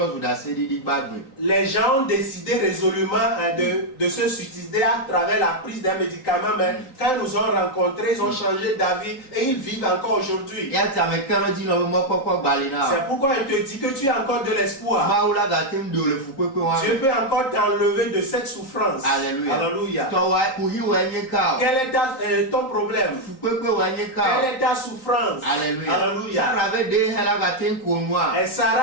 Les gens ont décidé résolument de se suicider à travers la prise des médicaments, mais quand ils nous ont rencontrés, ils ont changé d'avis et ils vivent encore aujourd'hui. C'est pourquoi il te dit que tu as encore de l'espoir. Dieu peut encore t'enlever de cette souffrance. Alléluia. Quel est ton problème? Quelle est ta souffrance? Alléluia. Et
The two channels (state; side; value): late; right; 3.8 ms